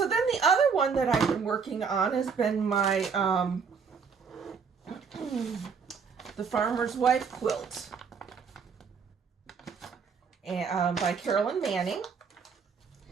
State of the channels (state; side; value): quieter; left; 5.9 dB